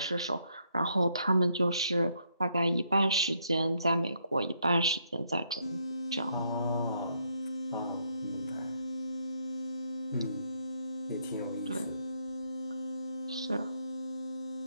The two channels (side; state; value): both; inverted; correlation -0.74